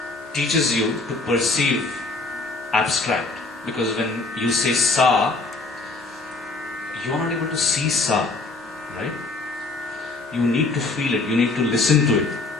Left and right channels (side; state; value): right; quieter; 3.5 dB